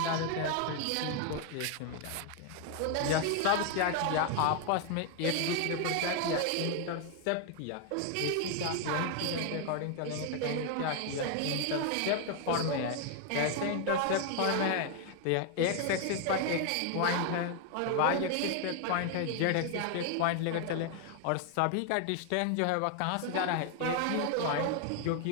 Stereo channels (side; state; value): both; different; correlation 0.00